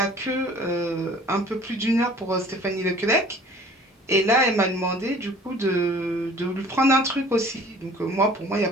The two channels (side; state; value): both; normal; correlation 0.50